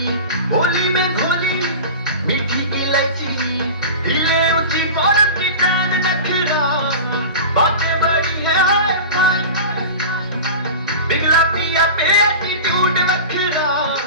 होली में घोली, मीठी इलायची, हिले ऊंची बॉर्डर की टांग नखरा, बातें बड़ी है पिघला पिया पे एटीट्यूड नखरा,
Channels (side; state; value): both; inverted; correlation -0.31